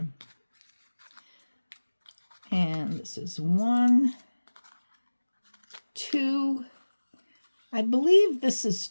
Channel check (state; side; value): inverted; both; correlation -1.00